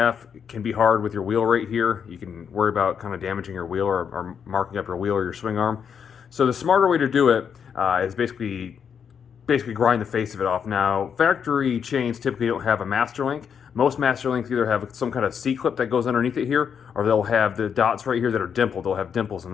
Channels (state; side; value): quieter; right; 7.3 dB